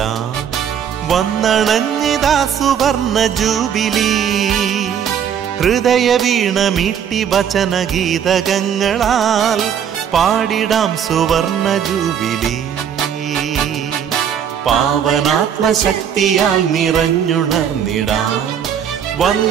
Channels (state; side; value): quieter; left; 8.6 dB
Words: വന്നണഞ്ഞിതാ സുവർണ ജൂബിലി. ഹൃദയ വീണമീട്ടി വചനഗീതകങ്ങളാൽ പാടിടാം സുവർണ ജൂബിലി. പാവനാത്മശക്തിയാൽ നിറഞ്ഞുണർന്നിടാം.